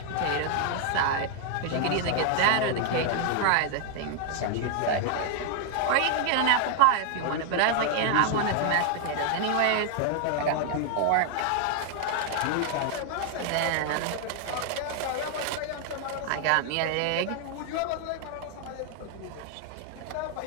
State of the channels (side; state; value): both; different; correlation 0.00